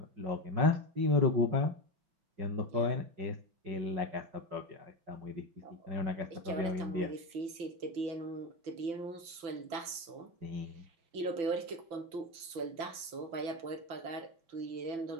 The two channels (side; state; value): left; late; 6.0 ms